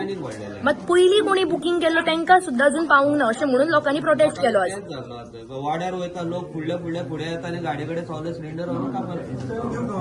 वाडलेल्या. मात पयलीं कोणी बुकींग केल्लो तांकां सुद्दां अजून पावूंक ना अशें म्हणून लोकांनी प्रोटेस्ट केलो आज. तेच जाल्लो आतां वाड्यार वयता लोक फुडे येता आनी गाडी कडेन सगळे सिलिंडर व्हरून कामार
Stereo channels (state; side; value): identical; both; correlation 1.00